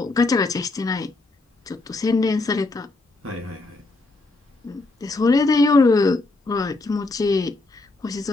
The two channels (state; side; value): quieter; right; 3.2 dB